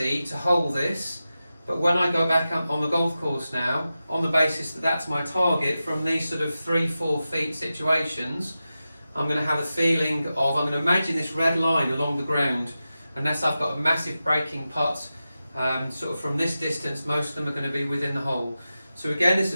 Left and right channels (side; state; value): both; inverted; correlation -0.93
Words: to hold this, but when I go back up on the golf course now, on the basis that that's my target from these sort of 3-4 feet situations, I'm going to have a feeling of, I'm going to imagine this red line along the ground, unless I've got a massive breaking putt, sort of from this distance, most of them are going to be within the hole. So again, this